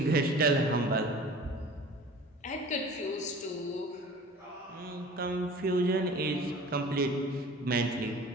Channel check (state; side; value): normal; both; correlation 0.43